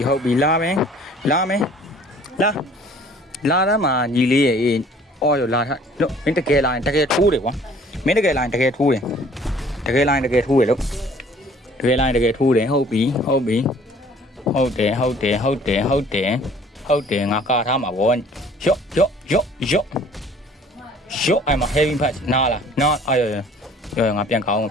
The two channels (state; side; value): normal; both; correlation 0.54